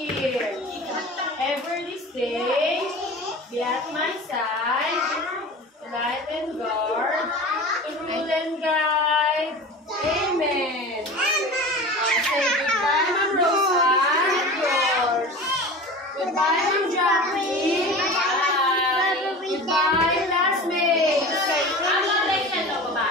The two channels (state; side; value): normal; both; correlation 0.35